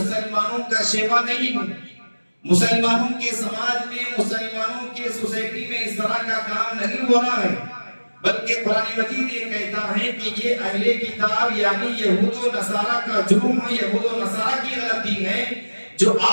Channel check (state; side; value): inverted; both; correlation -1.00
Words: کا شیوا نہیں ہے۔ مسلمانوں کے سماج میں، مسلمانوں کے سوسائٹی میں اس طرح کا کام نہیں ہو رہا ہے، بلکہ قرآن مجید یہ کہتا ہے کہ یہ اہل کتاب یعنی یہود و نصارہ کا جرم ہے، یہود و نصارہ کی غلطی ہے، جو